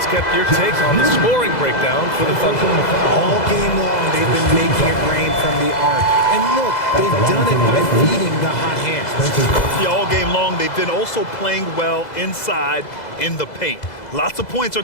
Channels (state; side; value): late; right; 2.0 ms